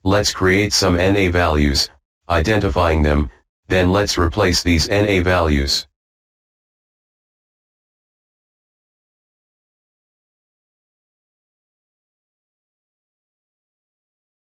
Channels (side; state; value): both; identical; correlation 1.00